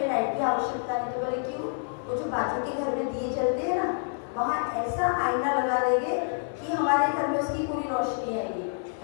लाइट की आवश्यकता नहीं। तो बोले क्यों? वो जो बाजू के घर में दिए जलते हैं ना, वहाँ ऐसा आईना लगा देंगे कि हमारे घर में उसकी पूरी रोशनी आएगी,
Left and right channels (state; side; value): silent; right; digital silence